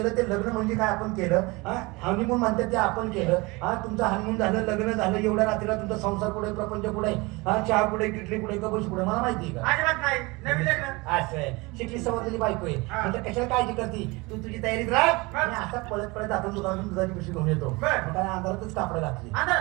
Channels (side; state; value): left; quieter; 24.8 dB